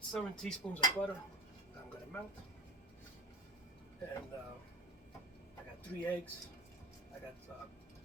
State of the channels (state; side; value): normal; both; correlation 0.36